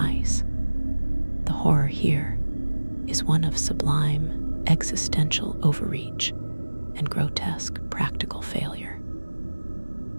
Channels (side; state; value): both; inverted; correlation -1.00